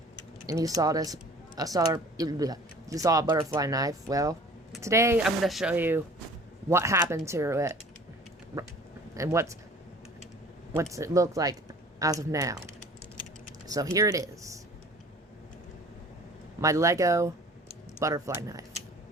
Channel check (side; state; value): both; normal; correlation 0.47